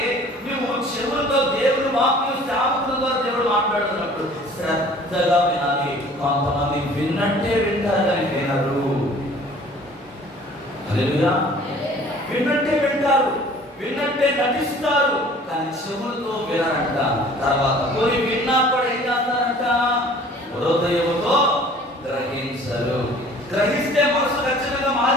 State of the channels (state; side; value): normal; both; correlation 0.51